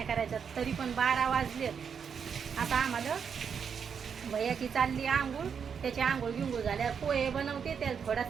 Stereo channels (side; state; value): left; quieter; 6.9 dB